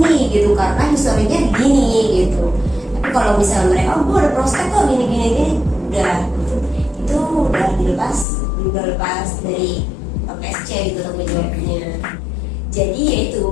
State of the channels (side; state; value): right; drops out; at 8.2 s